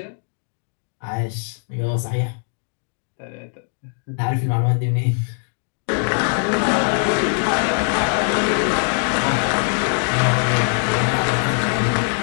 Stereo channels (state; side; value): silent; right; 56 dB below the other